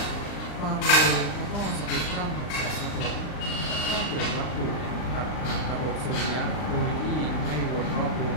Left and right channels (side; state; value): right; late; 39 ms